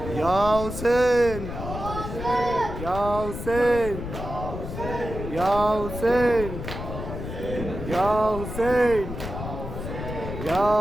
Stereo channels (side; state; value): left; noise; rumble, 7 dB below the sound